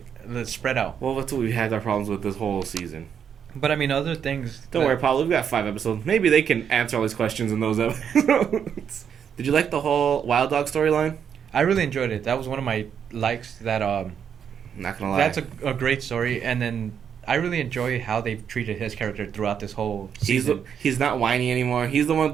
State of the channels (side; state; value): left; quieter; 7.9 dB